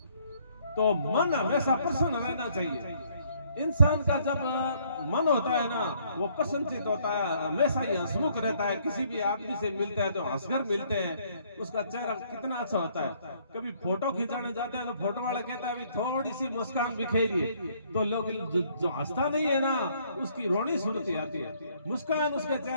तो मन हमेशा प्रसन्न रहना चाहिए, इंसान का जब मन होता है ना, वो प्रसन्नचित होता है, हमेशा ही हंसमुख रहता है। किसी भी आदमी से मिलते हैं तो हंसकर मिलते हैं, उसका चेहरा कितना अच्छा होता है। कभी फोटो खिंचाने जाते हैं तो फोटो वाला कहता है अभी थोड़ी सी मुस्कान बिखेरिए, तो लोग जो हंसता नहीं है ना, उसकी रोनी सुनती आती है, मुस्कान उसके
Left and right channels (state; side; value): inverted; both; correlation -0.65